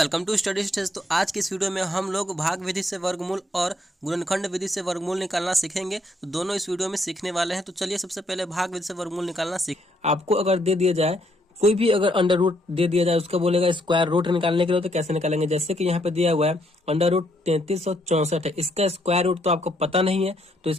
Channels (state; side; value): normal; both; correlation 0.72